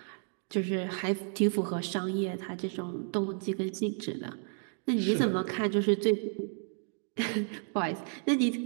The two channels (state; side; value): silent; left; 57 dB below the other